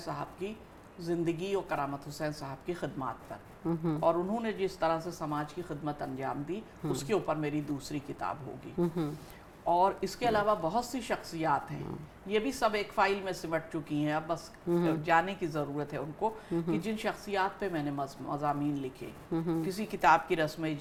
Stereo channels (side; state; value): both; identical; correlation 1.00